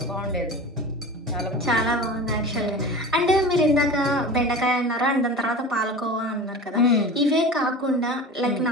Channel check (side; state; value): both; normal; correlation 0.34